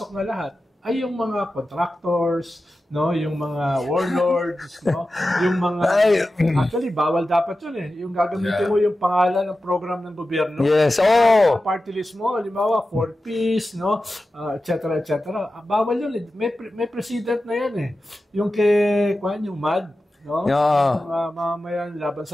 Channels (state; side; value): normal; both; correlation 0.93